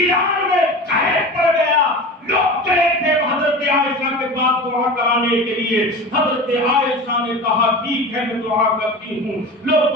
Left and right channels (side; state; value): both; normal; correlation 0.32